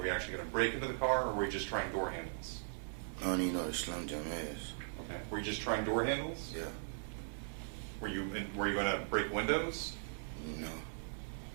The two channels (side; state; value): left; silent; digital silence